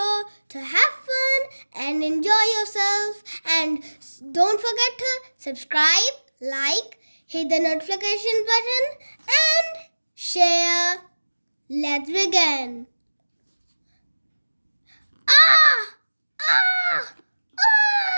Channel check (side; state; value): both; inverted; correlation -1.00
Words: to have fun and enjoy yourself, and don't forget to subscribe, like, hit the notification button and share. Let's begin. Ah! Ah!